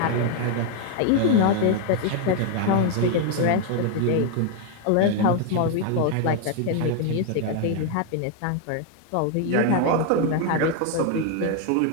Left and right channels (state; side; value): different; both; correlation 0.00